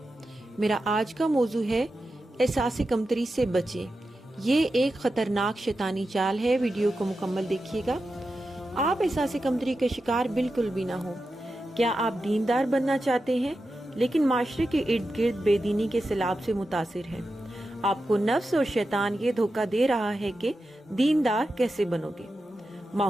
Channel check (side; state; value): both; normal; correlation 0.90